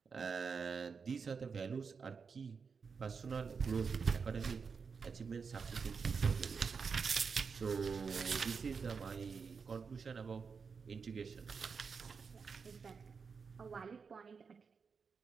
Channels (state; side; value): quieter; left; 5.5 dB